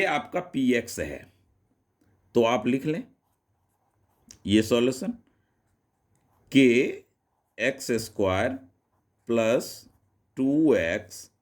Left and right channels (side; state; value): both; identical; correlation 1.00